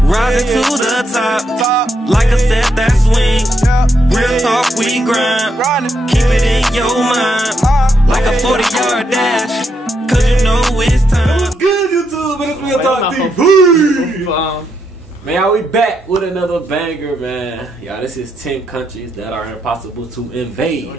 rising to the top, like a set that swing. Real talk, we grind, keep it in your mind, like a 40-yard dash, cause you know it's time. What's good, YouTube? It's Real Talk TV. Man, we back with another banger, man. Y'all, this is 10 countries that are impossible to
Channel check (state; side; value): normal; both; correlation 0.79